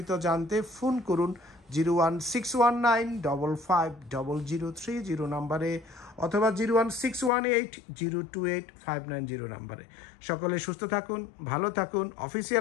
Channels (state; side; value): drops out; right; at 7.3 s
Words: জানতে ফোন করুন 01619550030 নাম্বারে অথবা 01618028590 নাম্বারে। সকলে সুস্থ থাকুন, ভালো থাকুন।